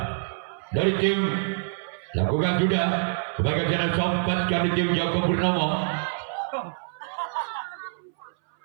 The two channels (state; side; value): silent; left; 59 dB below the other